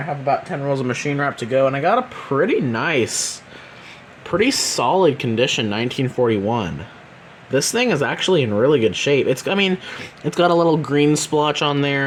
have about 10 rolls of machine wrap to go, and I got a pretty nice, pretty solid condition 1941. This thing is actually in really good shape. It's got a little green splotch on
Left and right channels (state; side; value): identical; both; correlation 1.00